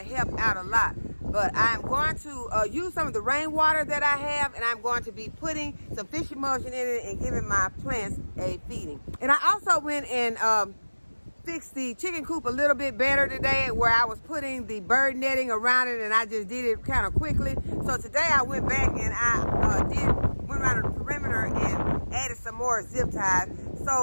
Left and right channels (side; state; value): both; inverted; correlation -1.00